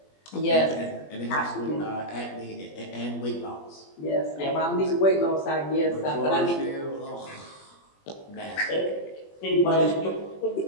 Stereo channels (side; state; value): right; late; 20 ms